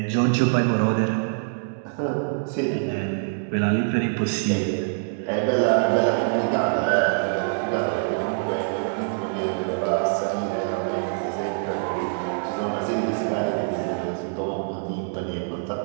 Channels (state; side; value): silent; left; digital silence